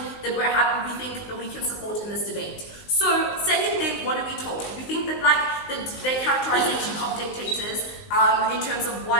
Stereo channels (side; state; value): right; late; 19 ms